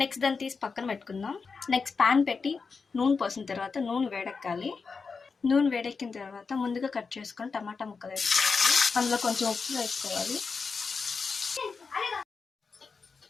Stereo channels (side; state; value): right; quieter; 4.9 dB